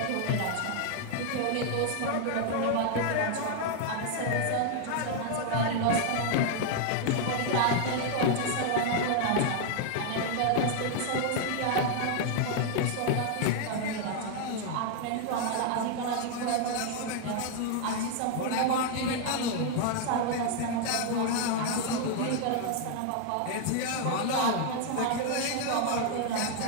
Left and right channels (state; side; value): different; both; correlation 0.00